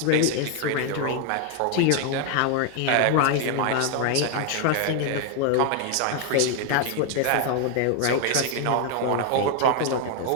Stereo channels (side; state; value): both; different; correlation 0.00